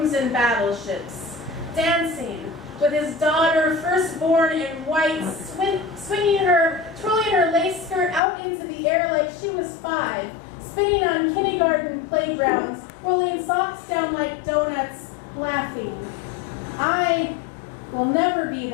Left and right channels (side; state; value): right; drops out; at 8.2 s